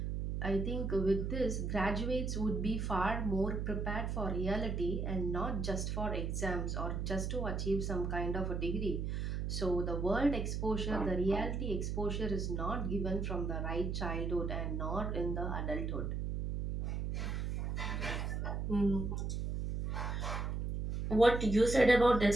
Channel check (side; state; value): right; noise; hum, 1 dB below the sound